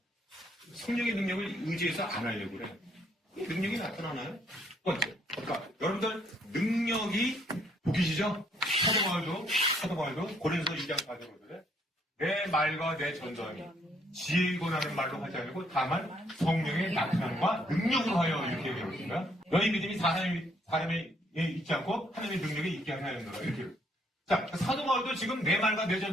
성령의 능력을 의지해서 안 하려고 그래. 능력이 나타나나요? 첫 번째. 그러니까 여러분들 능력이 보기시죠? 사도 바울도 고린도서 2장 4절에 그래. 내 말과 내 전도함이 지혜이고 나는 말로 하지 않고 다만 성령의 나타남과 능력으로 하여 이렇게 얘기하고 있습니다. 너희 믿음이 사람에 있지 않고 하나님의 능력에 있게 하나였노라 이렇게. 자, 사도 바울도 지금 내 말과 내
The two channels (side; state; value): both; normal; correlation 0.68